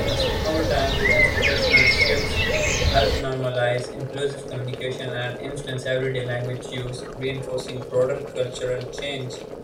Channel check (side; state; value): both; identical; correlation 1.00